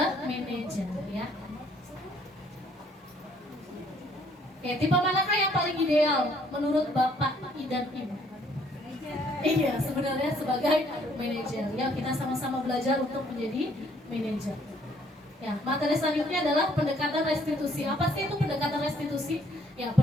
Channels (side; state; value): both; normal; correlation 0.64